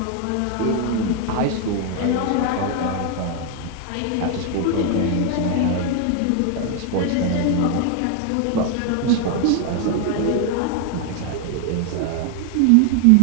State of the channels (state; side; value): different; both; correlation 0.00